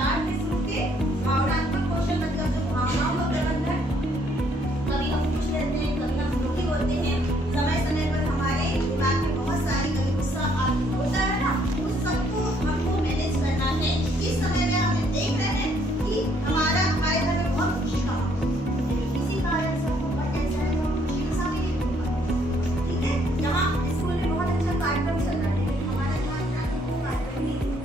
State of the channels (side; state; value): both; normal; correlation 0.67